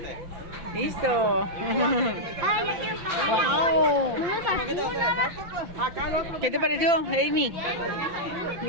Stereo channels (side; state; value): left; late; 5.8 ms